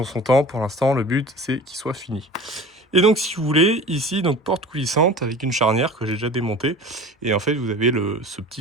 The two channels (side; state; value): both; normal; correlation 0.39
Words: son temps. Pour l'instant, le but, c'est qu'il soit fini. Et donc, si vous voulez, ici, donc porte coulissante avec une charnière que j'ai déjà démontée. Et en fait, vous avez ce